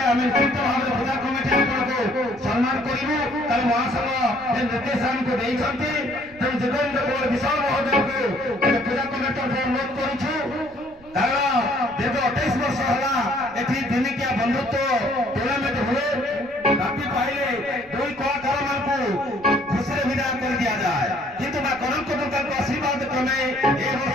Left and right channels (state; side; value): noise; right; rumble, 26 dB below the sound